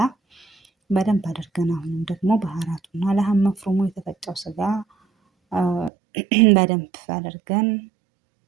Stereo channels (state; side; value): drops out; left; at 5.9 s